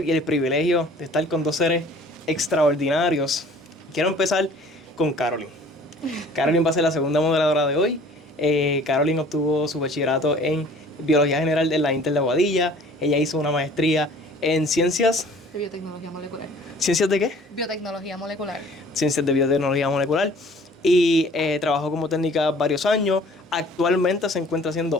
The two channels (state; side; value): normal; both; correlation 0.51